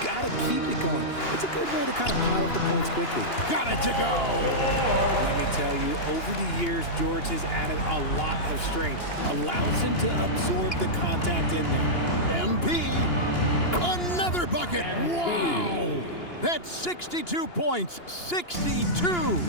to keep it going. It's a good way to kind of pile up the points quickly. Got it to go. Let me tell you, over the years, George has added a lot of strength. Allows him to absorb the contact in there. MP, another bucket. Wow. That's 62 points, 62.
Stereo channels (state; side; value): late; right; 2.9 ms